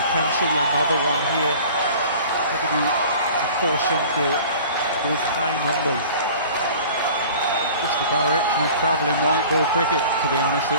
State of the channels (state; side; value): inverted; both; correlation -0.44